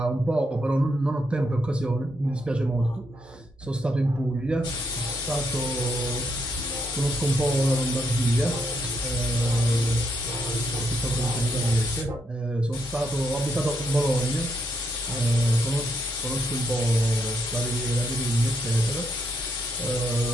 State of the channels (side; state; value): both; normal; correlation 0.76